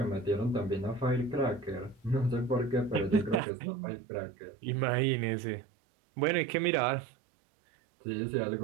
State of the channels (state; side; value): drops out; left; at 3.4 s